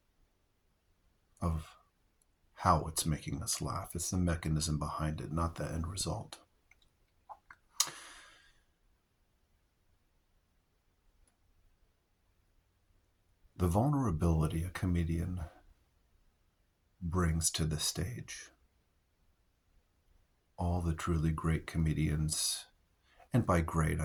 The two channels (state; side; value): identical; both; correlation 1.00